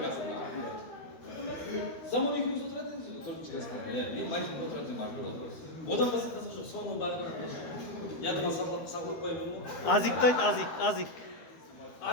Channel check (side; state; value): right; late; 13 ms